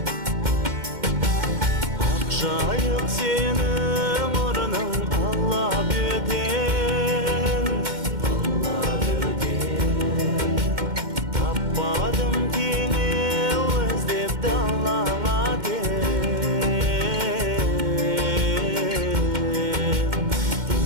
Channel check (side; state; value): left; late; 2.1 ms